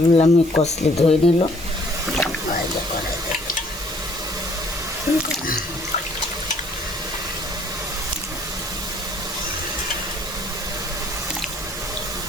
আমি কষলে ধুয়ে নিল।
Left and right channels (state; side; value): normal; both; correlation 0.60